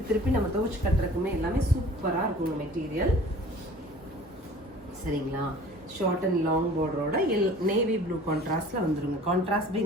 திருப்பி நம்ம துவச்சி கட்டுறதுக்குமே எல்லாமே சூப்பராக இருக்குங்க மெட்டீரியல். சரிங்களா? ஷார்ட் அண்ட் லாங் பார்டரோட நேவி ப்ளூ கான்ட்ராஸ்ட்ல வந்துருங்க. Contrast by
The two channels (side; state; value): both; normal; correlation 0.46